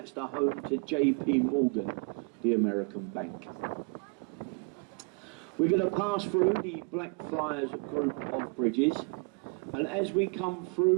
the home to J.P. Morgan, the American bank. We're going to pass through the Blackfriars group of bridges, and as we come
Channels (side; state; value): left; quieter; 36.5 dB